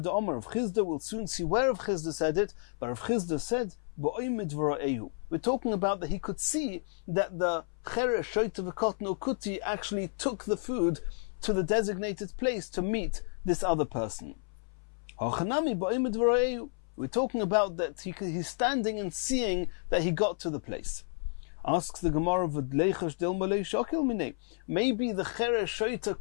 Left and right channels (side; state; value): right; silent; 57 dB below the other